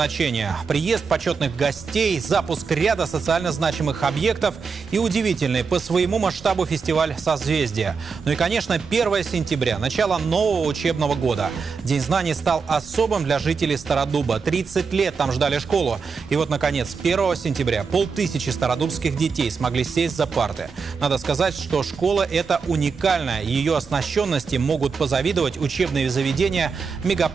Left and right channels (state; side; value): quieter; left; 5.3 dB